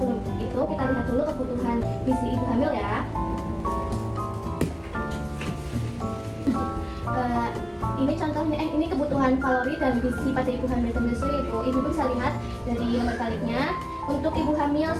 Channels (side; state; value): both; identical; correlation 1.00